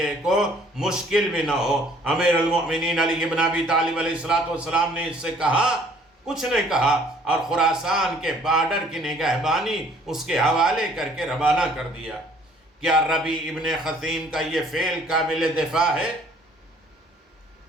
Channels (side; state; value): both; normal; correlation 0.58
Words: کو مشکل بھی نہ ہو۔ امیر المؤمنین علی بن ابی طالب علیہ السلام نے اس سے کہا، کچھ نہیں کہا، اور خراسان کے بارڈر کی نگہبانی اس کے حوالے کر کے روانہ کر دیا۔ کیا ربی ابن خثیم کا یہ فعل قابل دفاع ہے؟